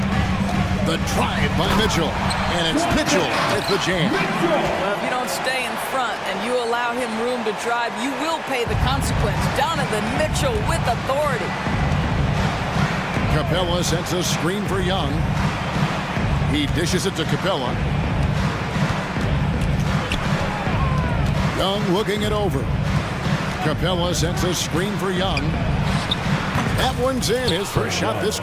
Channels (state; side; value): identical; both; correlation 1.00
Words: The drive by Mitchell. And it's Mitchell with the jam. Well, if you don't stay in front and you allow him room to drive, you will pay the consequence. Donovan Mitchell with authority. Capella sends a screen for Young. He dishes it to Capella. Young looking it over. Capella sends a screen for Young. That one's in, his first shot this